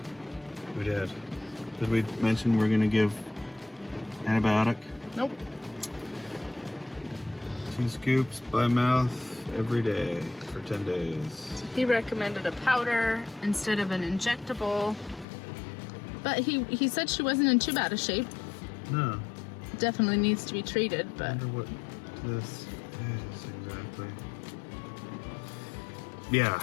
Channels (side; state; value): right; drops out; at 15.2 s